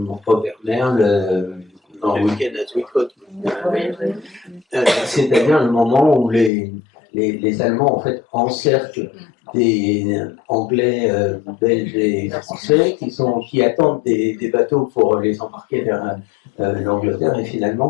Robert Merle dans le week-end à Sweetcoat. C'est-à-dire le moment où les Allemands en fait encerclent des Anglais, Belges et Français qui attendent des bateaux pour les embarquer vers l'Angleterre et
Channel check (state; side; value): drops out; right; at 6.5 s